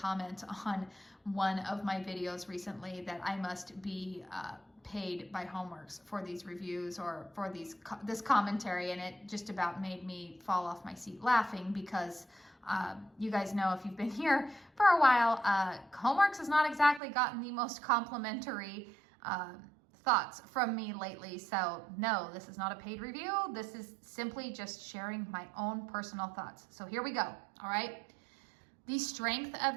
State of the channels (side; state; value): left; drops out; at 17.0 s